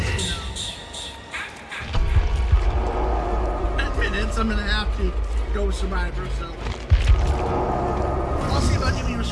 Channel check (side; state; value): both; identical; correlation 1.00